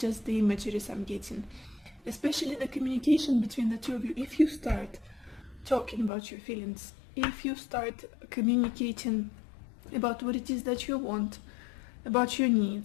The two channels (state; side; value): drops out; right; at 6.1 s